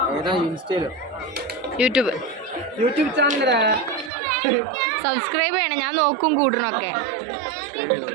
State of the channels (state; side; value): drops out; left; at 4.1 s